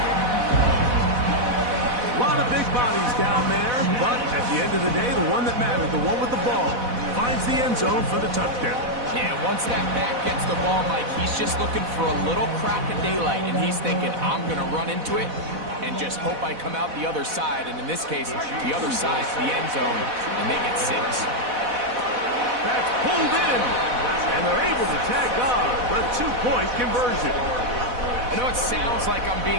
A lot of big bodies down there, but at the end of the day, the one that mattered, the one with the ball, finds the end zone for the touchdown. Yeah, once that back gets the ball, Mike, he's just looking for a little crack of daylight, and he's thinking, I'm going to run into it and just hope I come out the other side. And in this case, the other side's the end zone, and they get 6. That's pulled in, and they're able to tag on the 2-point conversion. I know it sounds like I'm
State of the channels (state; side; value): late; left; 4.1 ms